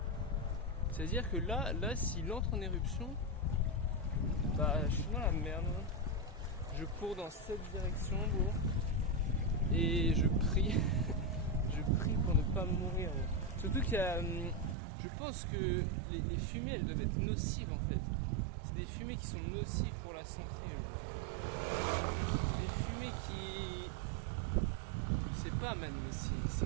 C'est-à-dire que là, s'il entre en éruption, bah je suis dans la merde. Je cours dans cette direction, bro. Et je prie. Je prie pour ne pas mourir. Bro. Surtout qu'il y a... Je pense que les fumées, elles doivent être nocives, en fait. C'est des fumées qui sont nocives pour la santé, bro. Des fumées qui... Je sais pas, man, mais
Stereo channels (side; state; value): left; drops out; at 14.8 s